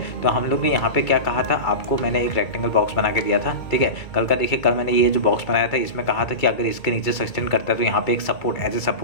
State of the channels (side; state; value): right; late; 2.3 ms